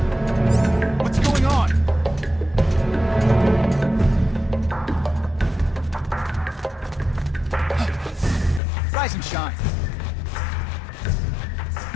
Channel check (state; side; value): drops out; right; at 8.6 s